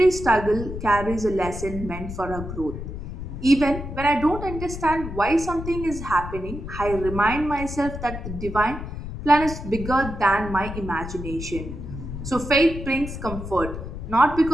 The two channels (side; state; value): left; noise; rumble, 8 dB below the sound